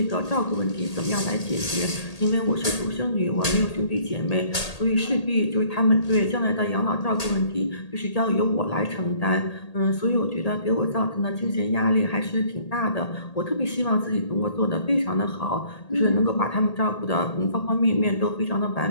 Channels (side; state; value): right; late; 1.8 ms